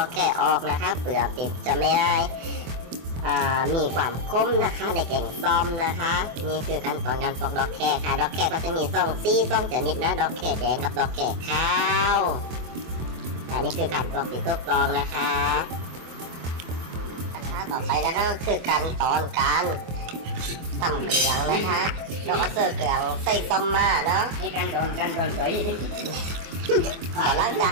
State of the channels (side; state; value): left; late; 24 ms